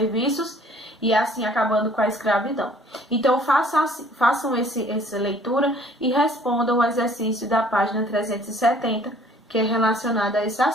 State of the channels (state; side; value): normal; both; correlation 0.56